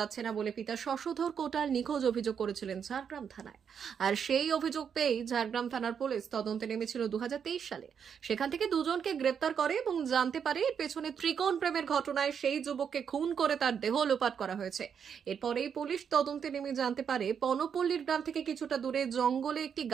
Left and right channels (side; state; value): left; quieter; 7.4 dB